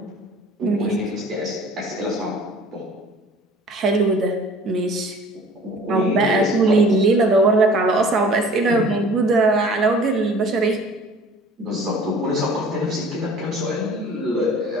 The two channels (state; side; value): normal; both; correlation 0.48